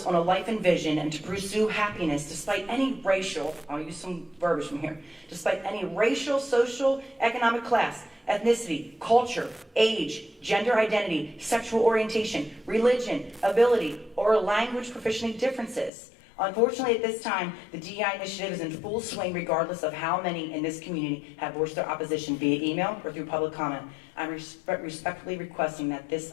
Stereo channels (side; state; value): right; drops out; at 15.9 s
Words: on a life and vision and to pursue happiness despite any racial, I'll use some verbiage from here, despite any racial, social, economic class, ethnicity, culture, age, gender identity, sexual orientation, religion, ability, or language proficiency differences. Unfortunately, at this time, the DEI initiative is in full swing regardless of how many in this community have voiced their opposition via email or through public comment. I'm respectfully requesting that this